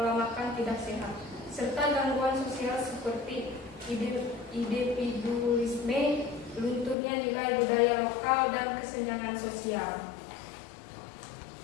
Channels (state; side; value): drops out; right; at 7.0 s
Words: makan tidak sehat, serta gangguan sosial seperti individualisme, lunturnya nilai budaya lokal, dan kesenjangan sosial.